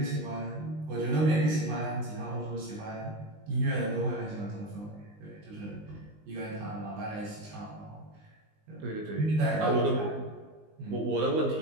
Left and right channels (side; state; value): left; late; 19 ms